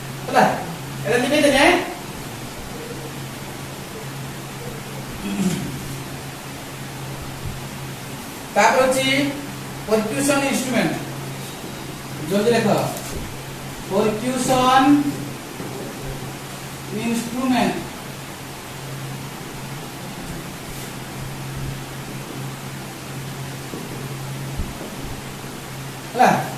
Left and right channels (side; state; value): both; identical; correlation 1.00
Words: हला एडा लिखि दे ने तापर होची परक्यूशन इंस्ट्रूमेंट जल्दी लिखो परक्यूशन इंस्ट्रूमेंट हला